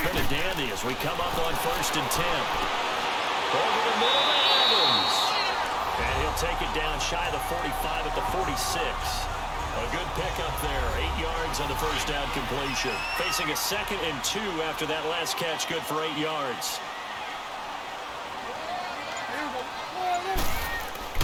been a dandy as we come up on 1st and 10. Over the middle to Evans. And he'll take it down shy of the 45 at the 46. A good pickup there. 8 yards on the first down completion. Facing a 2nd and 2 after that last catch, good for 8 yards.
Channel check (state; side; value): identical; both; correlation 1.00